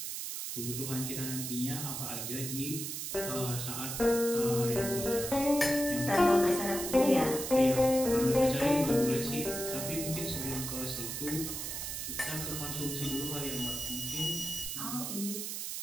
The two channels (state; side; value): noise; right; hiss, 5 dB below the sound